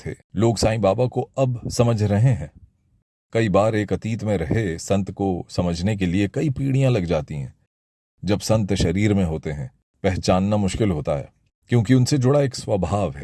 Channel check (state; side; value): identical; both; correlation 1.00